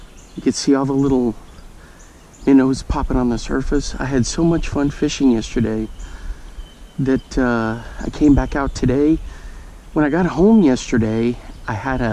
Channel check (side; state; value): both; identical; correlation 1.00